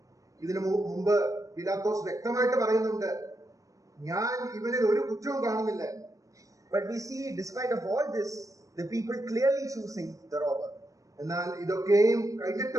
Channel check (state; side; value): late; left; 0.16 ms